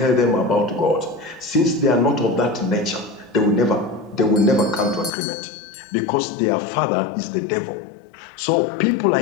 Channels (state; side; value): drops out; right; at 5.1 s